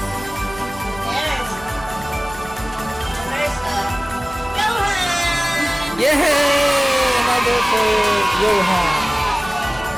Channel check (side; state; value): right; noise; hum, 18 dB below the sound